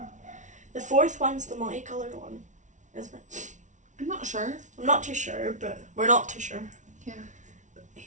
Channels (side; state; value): left; late; 0.36 ms